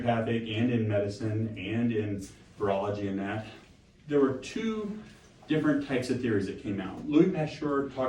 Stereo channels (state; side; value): identical; both; correlation 1.00